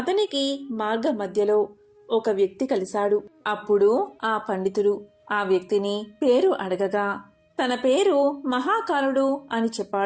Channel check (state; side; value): identical; both; correlation 1.00